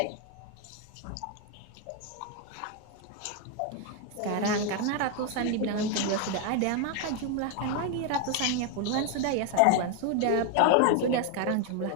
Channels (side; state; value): both; different; correlation 0.01